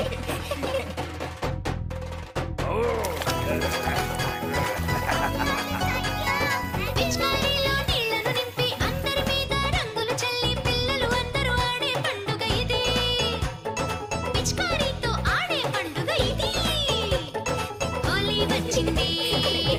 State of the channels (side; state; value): both; identical; correlation 1.00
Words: పిచికారీలో నీళ్లను నింపి అందరి మీద రంగులు చల్లి పిల్లలు అందరూ ఆడే పండుగ ఇది. పిచికారీతో ఆడే పండుగ ఇది. హోలీ వచ్చింది,